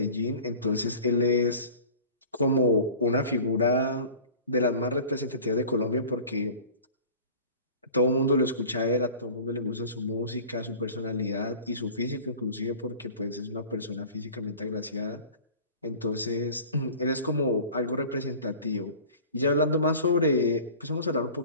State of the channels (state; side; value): inverted; both; correlation -0.43